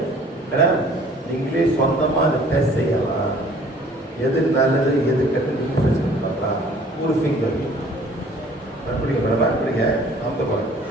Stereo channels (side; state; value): both; normal; correlation 0.54